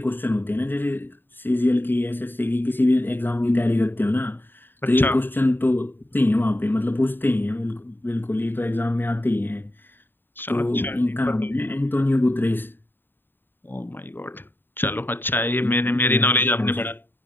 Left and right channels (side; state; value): right; late; 0.095 ms